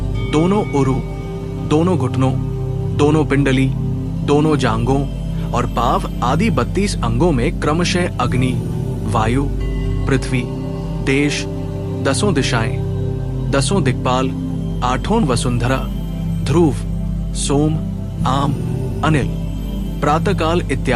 दोनों उरु, दोनों घुटनों, दोनों पिंडली, दोनों जांघों और पाव आदि 32 अंगों में क्रमशः अग्नि, वायु, पृथ्वी, देश, 10 दिशाएं, 10 दिक्पाल, 8 वसुंधरा, ध्रुव, सोम, आम, अनिल, प्रातःकाल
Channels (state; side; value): identical; both; correlation 1.00